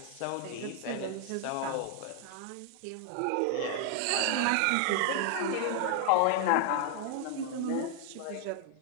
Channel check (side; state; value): both; different; correlation 0.00